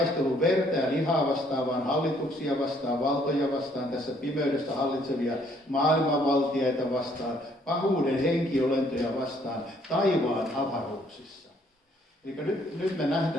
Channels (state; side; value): normal; both; correlation 0.65